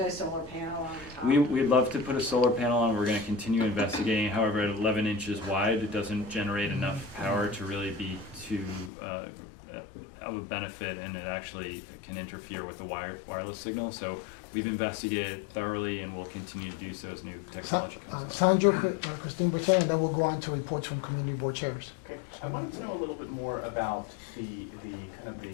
solar panel on top? We'd love to put a solar panel on. We're going to continue investigating. However, at 11 inches wide, it doesn't generate enough power to really be of a benefit, and it actually can interfere with the wireless signal. So we've investigated thoroughly, and we'll continue to do so as new technology comes. Sandro, Christine Bertin, and then we'll go on to reports from community board chairs. Okay, I wanted to know a little bit more about the kind of the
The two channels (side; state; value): right; drops out; at 8.9 s